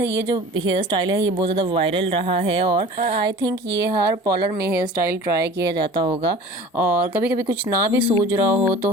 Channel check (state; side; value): normal; both; correlation 0.42